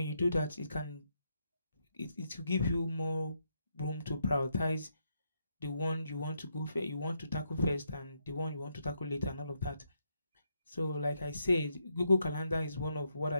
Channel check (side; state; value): both; inverted; correlation -0.79